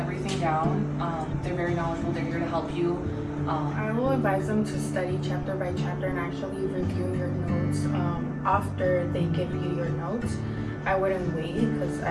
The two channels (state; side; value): identical; both; correlation 1.00